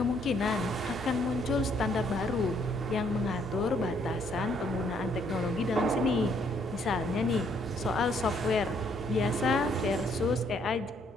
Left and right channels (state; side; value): normal; both; correlation 0.68